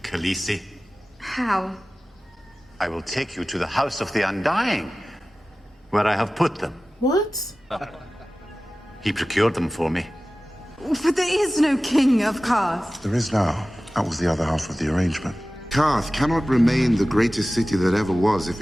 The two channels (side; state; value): both; normal; correlation 0.96